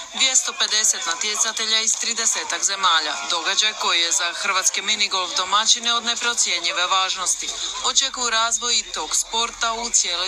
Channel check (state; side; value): identical; both; correlation 1.00